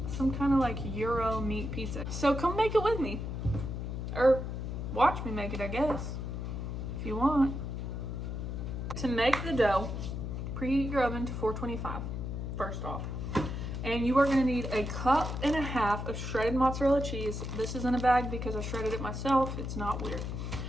some kind of like Euro meat pizza. So come make it with me. Or watch me make it, I guess, if you want. To make the dough, preheat your oven to 425, first off. And you are gonna need 1.5 cups of shredded mozzarella cheese. This is in a bag because I shredded it myself. It's not weird.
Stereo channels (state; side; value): noise; left; hum, 4 dB below the sound